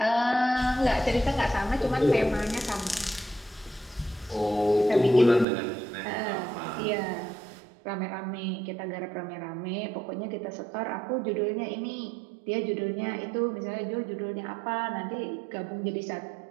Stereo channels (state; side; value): drops out; left; at 5.5 s